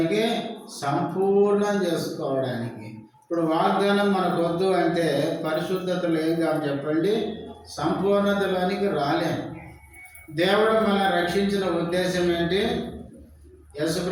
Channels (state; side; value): identical; both; correlation 1.00